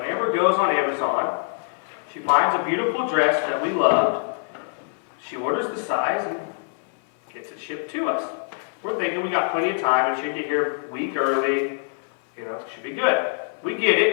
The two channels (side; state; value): right; silent; 56 dB below the other